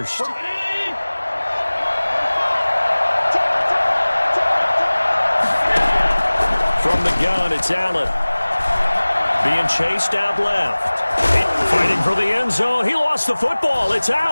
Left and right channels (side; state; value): both; inverted; correlation -1.00